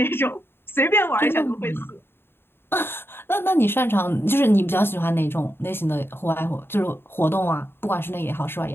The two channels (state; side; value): late; right; 0.11 ms